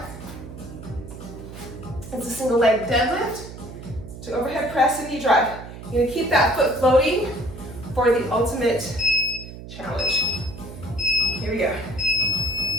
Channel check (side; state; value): right; noise; hum, 13 dB below the sound